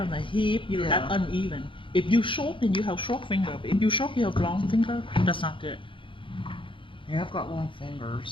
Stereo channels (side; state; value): right; late; 0.25 ms